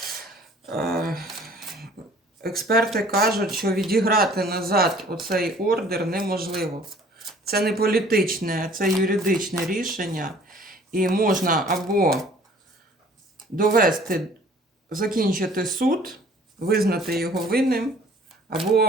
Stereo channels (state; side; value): normal; both; correlation 0.53